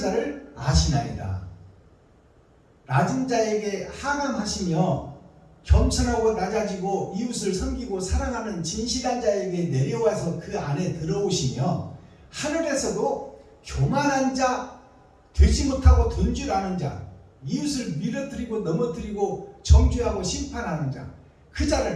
아시나이다. 낮은 자에게 하감하시며 겸손하고 낮아지고 이웃을 섬기고 사랑하는 진실한 자에게 내려와서 그 안에 들어오시며 하늘에서도 교만한 자, 되지 못하고 된 줄 아는 자, 이웃을 밀어뜨리고 넘어뜨리고 정죄하고 심판하는 자, 그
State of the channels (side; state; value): both; identical; correlation 1.00